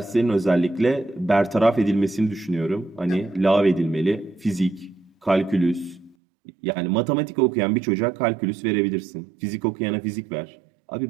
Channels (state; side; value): drops out; left; at 6.2 s